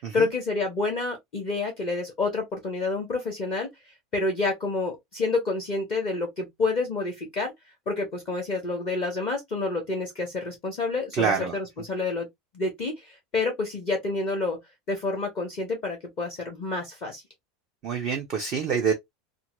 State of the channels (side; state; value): both; normal; correlation 0.44